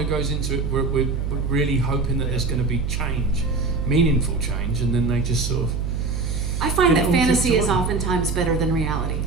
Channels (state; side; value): noise; right; hum, 1 dB below the sound